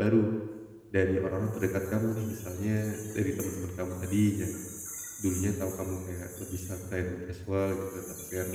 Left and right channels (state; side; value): identical; both; correlation 1.00